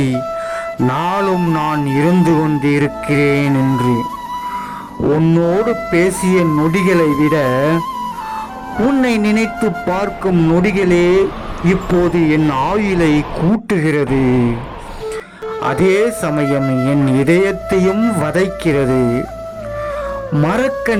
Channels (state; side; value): identical; both; correlation 1.00